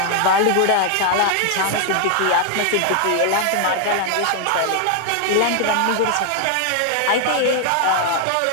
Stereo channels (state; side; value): different; both; correlation 0.00